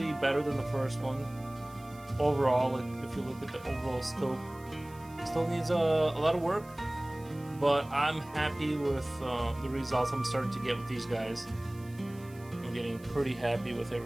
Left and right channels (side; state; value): right; noise; hiss, 24 dB below the sound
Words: better than the first one. Overall, like if you look at the overall scope, still needs a lot of work. But I'm happy with the results I'm starting to get with these guys. I'm getting pretty happy with